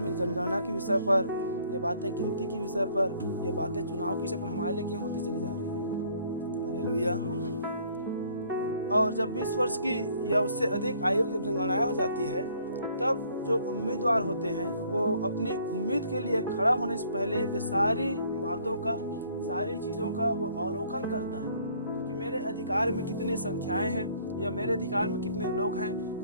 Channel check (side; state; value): both; inverted; correlation -0.60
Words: जनगणना के विषय पर, ये बातें गिनती के विषय पर, ये बातें चुनाव के विषय पर हमारे लिए क्यों होती चली जा रही है। हालेलुया। और जब 20 वर्ष की या उससे अधिक आयु जब जनगणना हो जाती है, तब जो उम्मीदवार होते हैं वो अपनी उम्मीद के लिए खड़ा होने से पहले वे सारी बातों का, सारी चीज़ों का वो अवलोकन करता है कि मेरे अधिकार में कितनी संख्याएं हैं, या मेरे अधिकार में कितने लोग हैं,